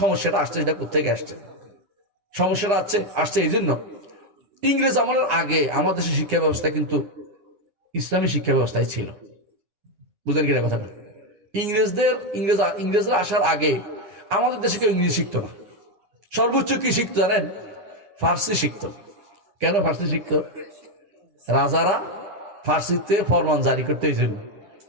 সমস্যাটা আসছে, সেটা কোথেকে আসছে? সমস্যাটা আসছে এই জন্য, ইংরেজ আমলের আগে আমাদের দেশের শিক্ষা ব্যবস্থা কিন্তু ইসলামী শিক্ষা ব্যবস্থায় ছিল। বুঝলেন কিনা কথাটা? ইংরেজরা আসার আগে আমাদের দেশে কেউ ইংরেজি শিখতো না। সর্বোচ্চ কি শিখতো জানেন? ফার্সি শিখতো। কেন ফার্সি শিখতো? রাজারা ফার্সিতে ফরমান জারি করতে, এই জন্য।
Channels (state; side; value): late; left; 9.8 ms